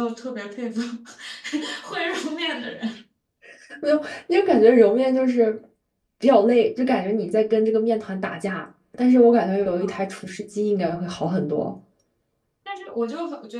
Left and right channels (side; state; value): both; identical; correlation 1.00